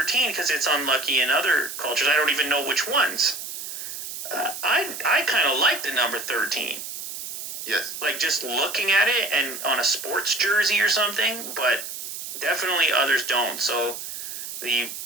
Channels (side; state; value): right; noise; hiss, 8 dB below the sound